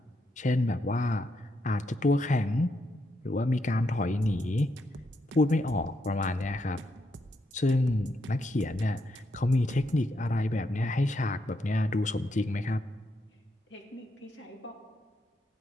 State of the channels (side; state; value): both; normal; correlation 0.79